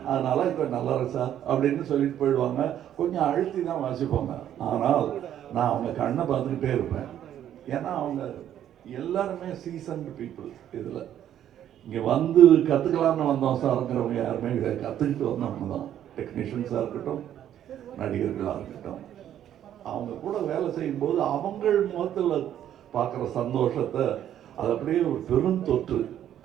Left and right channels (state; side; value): quieter; left; 10.8 dB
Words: அதனால இப்போ நல்லா இருக்கு சார் அப்படின்னு சொல்லிட்டு போயிடுவாங்க. கொஞ்சம் அழுத்தி தான் வாசிப்பாங்க. ஆனால் நான் அவங்க கண்ணை பார்த்துக்கிட்டே இருப்பேன். ஏன்னா அவங்க எல்லாருமே சீசன்டு பீப்புள். இதில் இங்கே வந்து கற்றுக்கலான்னு வந்தோம் சார்ங்கிறவங்க யாருமே கிடையாது. கற்றுக்கிட்டு வந்தவங்க தான். டெக்னீஷியன்ஸாக இருக்கட்டும், நடிகர்களாக இருக்கட்டும், அவங்க கூட வேலை செய்யும்போது அவங்கள் முகத்தில் பார்க்குற சந்தோஷத்தை அது அப்படியே ஒரு பெரும் தொற்று,